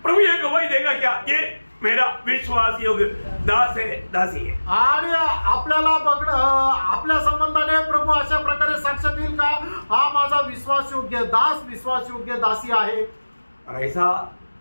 प्रभु ये गवाही देगा क्या? ये मेरा विश्वास योग्य दास है, दासी है। आणि आपल्याला आपल्या संबंधाने प्रभू अशा प्रकारे साक्ष देईल का? हा माझा विश्वास योग्य दास, विश्वास योग्य दासी आहे। और ऐसा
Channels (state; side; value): inverted; both; correlation -1.00